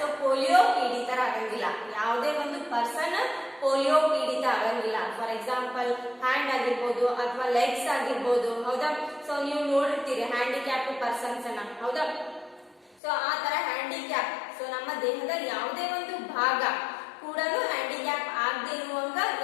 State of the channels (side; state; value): right; drops out; at 13.0 s